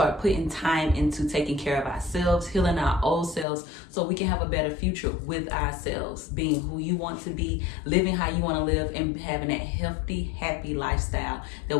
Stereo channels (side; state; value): right; drops out; at 3.5 s